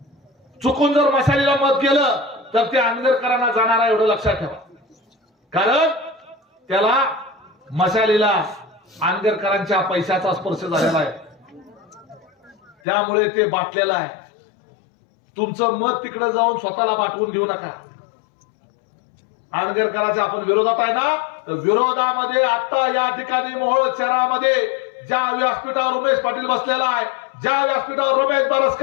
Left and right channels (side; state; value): right; drops out; at 12.8 s